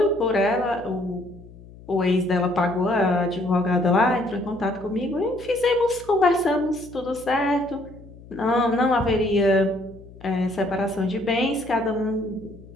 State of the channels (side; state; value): left; noise; hum, 20 dB below the sound